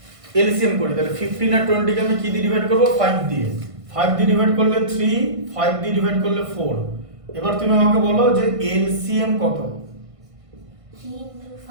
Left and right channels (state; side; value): late; left; 1.5 ms